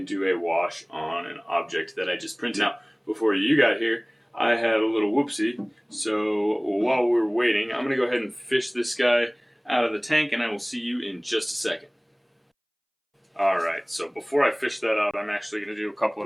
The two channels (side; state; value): both; identical; correlation 1.00